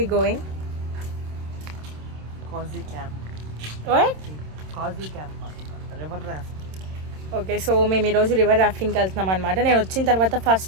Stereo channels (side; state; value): left; late; 26 ms